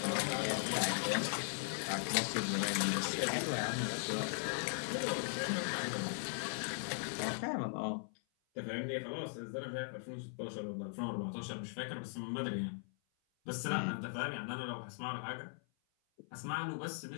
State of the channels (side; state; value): right; silent; 52 dB below the other